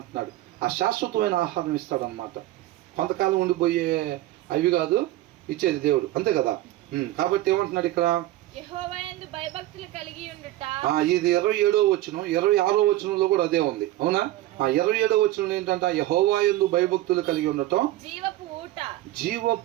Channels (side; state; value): left; quieter; 15.6 dB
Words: ఆ శాశ్వతమైన ఆహారం ఇస్తాడు అనమాట. కొంతకాలం ఉండిపోయే అవి కాదు ఇచ్చేది దేవుడు, అంతే కదా? కాబట్టి ఏమంటున్నాడు ఇక్కడ? ఇది 27వ వచనం, 26వ వచనంలో కూడా అదే ఉంది. అవునా? 27వ వచనం ఏంటంటే యెహోవాయందు భయభక్తులు కలిగి ఉండటం